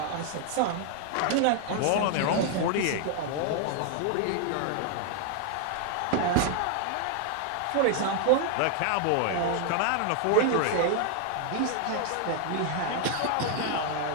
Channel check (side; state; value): both; different; correlation 0.00